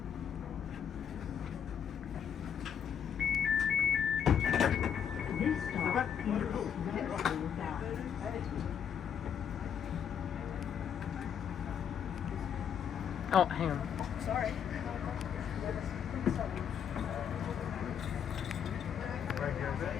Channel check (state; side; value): quieter; right; 8.3 dB